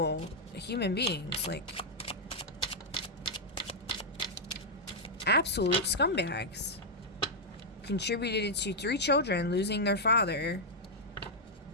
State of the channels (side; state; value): both; normal; correlation -0.04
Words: human beings, like absolute scumbags. Contributed to 3 children losing their father.